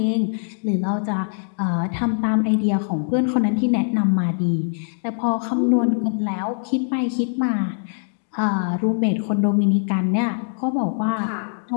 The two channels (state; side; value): silent; right; digital silence